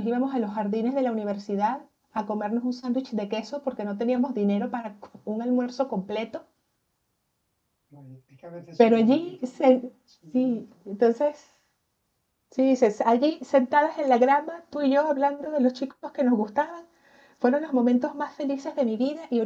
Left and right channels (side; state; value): both; identical; correlation 1.00